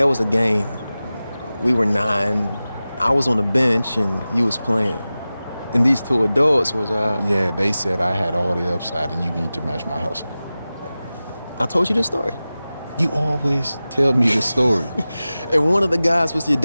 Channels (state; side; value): inverted; both; correlation -0.96